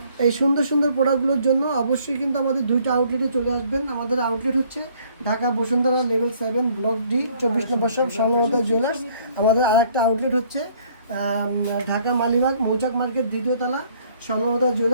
এই সুন্দর সুন্দর প্রোডাক্টগুলোর জন্য অবশ্যই কিন্তু আমাদের দুইটা আউটলেটে চলে আসবেন। আমাদের আউটলেট হচ্ছে Dhaka Bashundhara level 7 block D 24 নম্বর শপ স্বর্ণলতা জুয়েলার্স। আমাদের আরেকটা আউটলেট হচ্ছে ঢাকা মালিবাগ মৌচাক মার্কেট 2য় তলা স্বর্ণলতা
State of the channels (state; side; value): inverted; both; correlation -0.61